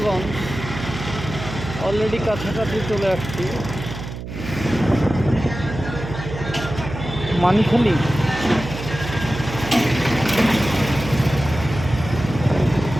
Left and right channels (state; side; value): noise; right; hum, 9 dB below the sound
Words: অলরেডি কাছাকাছি চলে আসছি। মানিখালি,